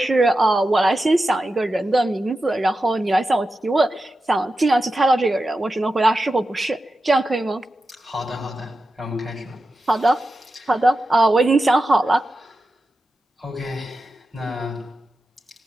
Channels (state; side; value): normal; both; correlation 0.91